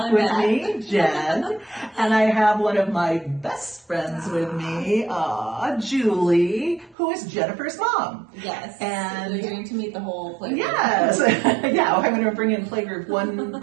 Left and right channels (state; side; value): drops out; left; at 7.0 s